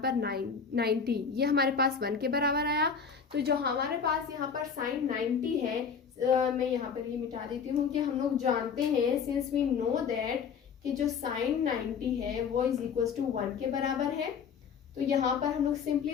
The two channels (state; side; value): quieter; right; 6.3 dB